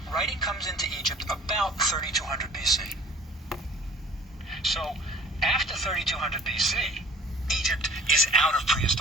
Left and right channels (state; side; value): normal; both; correlation 0.50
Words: writing comes into Egypt about 3200 BC. So after 3200 BC, Egypt is out of